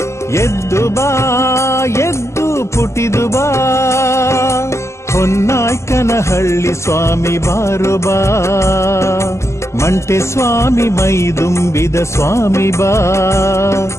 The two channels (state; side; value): late; right; 0.13 ms